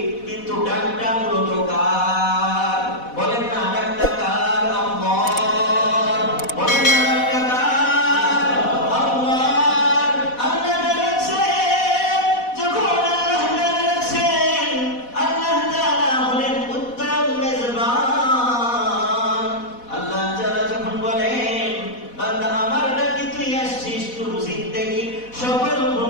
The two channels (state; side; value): late; right; 4.1 ms